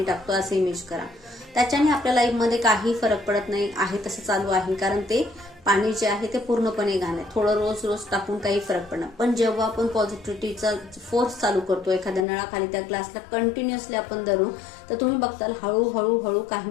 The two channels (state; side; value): drops out; right; at 12.2 s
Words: टाकतो असं इमेज करा. त्याच्याने आपल्या लाईफमध्ये काही फरक पडत नाही, आहे तसं चालू आहे, कारण ते पाणी जे आहे ते पूर्णपणे घाण आहे. थोडं रोज रोज टाकून काही फरक पडणार. पण जेव्हा आपण पॉझिटिव्हिटीचा फोर्स चालू करतो एखाद्या नळाखाली त्या ग्लासला कंटिन्युअसली आपण धरू, तर तुम्ही बघताल हळूहळू हळू काही